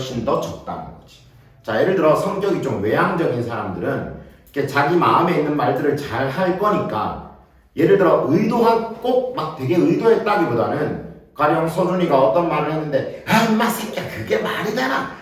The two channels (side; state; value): both; identical; correlation 1.00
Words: 더 적다는 거지. 자, 예를 들어 성격이 좀 외향적인 사람들은 이렇게 자기 마음에 있는 말들을 잘 할 거니까, 예를 들어 의도한 꼭 막 되게 의도했다기보다는 가령 서준이가 어떤 말을 했는데 인마 새끼야 그게 말이 되나?